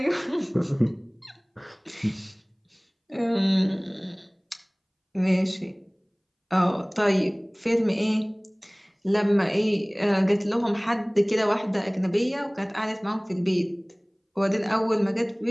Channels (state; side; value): identical; both; correlation 1.00